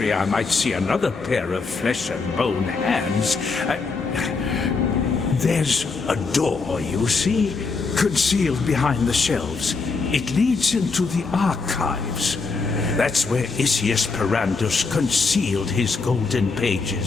I might see another pair of flesh and bone hands, there's a door, you see, concealed behind the shelves. It leads into the archives. That's where Isius Perandus concealed his golden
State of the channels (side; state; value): right; quieter; 4.4 dB